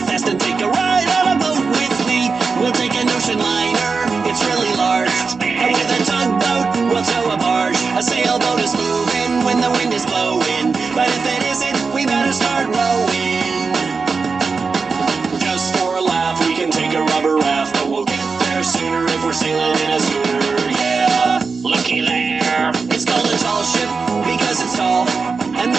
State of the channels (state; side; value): quieter; left; 4.7 dB